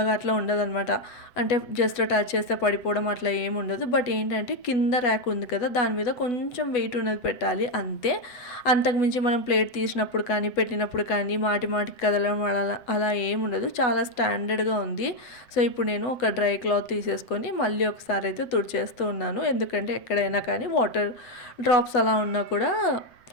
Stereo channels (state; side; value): late; right; 8.1 ms